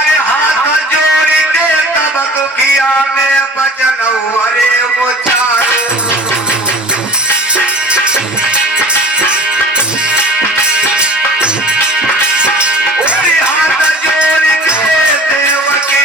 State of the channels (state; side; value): normal; both; correlation 0.41